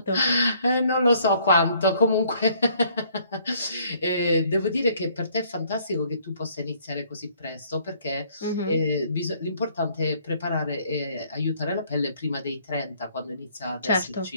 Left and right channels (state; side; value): inverted; both; correlation -0.63